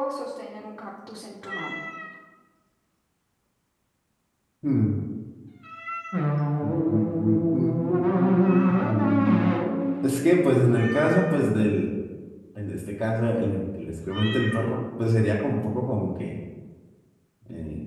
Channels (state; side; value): identical; both; correlation 1.00